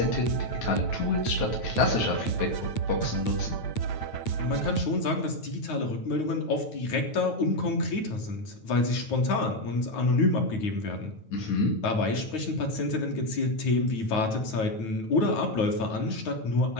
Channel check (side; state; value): right; late; 9.1 ms